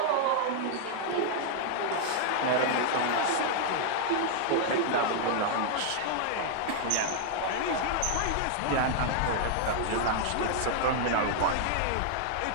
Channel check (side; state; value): both; different; correlation 0.00